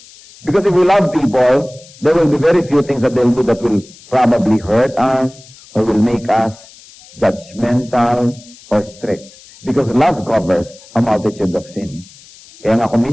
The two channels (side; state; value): left; noise; hiss, 23 dB below the sound